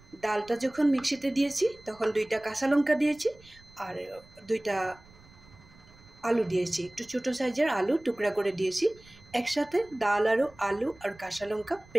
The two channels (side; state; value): right; noise; rumble, 25 dB below the sound